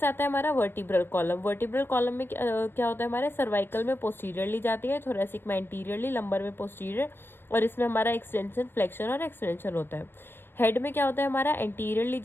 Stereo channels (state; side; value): late; right; 0.10 ms